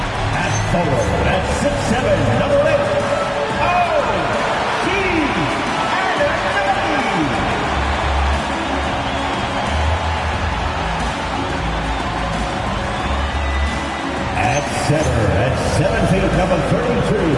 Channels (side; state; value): both; identical; correlation 1.00